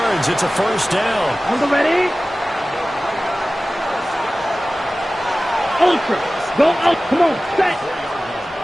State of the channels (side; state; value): both; normal; correlation 0.97